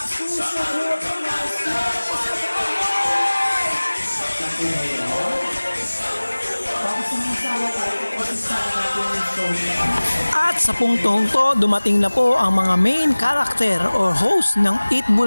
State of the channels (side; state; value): both; inverted; correlation -1.00